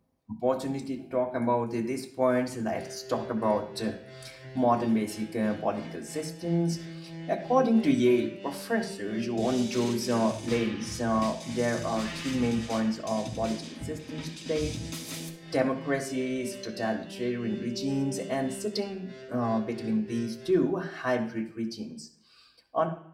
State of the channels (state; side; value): identical; both; correlation 1.00